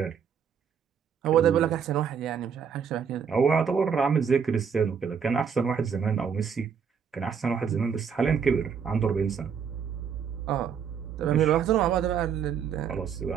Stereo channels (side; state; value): left; quieter; 7.0 dB